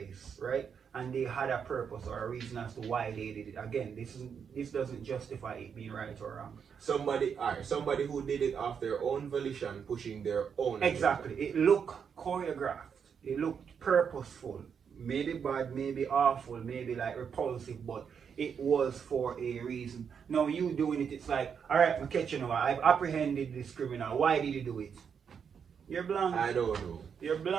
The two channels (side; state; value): left; quieter; 7.0 dB